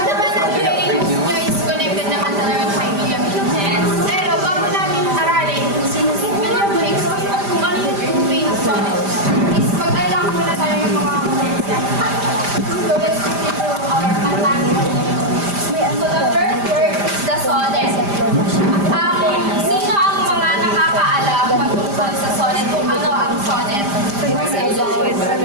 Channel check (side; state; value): left; late; 5.0 ms